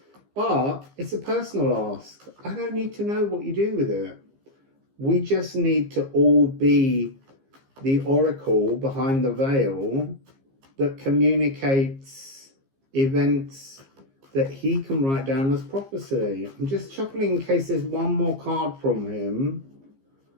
but it's a personal ask. I don't need to know what you do with it. We just need to all be the oracle behind the veil that communicates events that he can write down as prophecy. I'm just shuffling in case there's one more card from him.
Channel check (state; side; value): late; left; 15 ms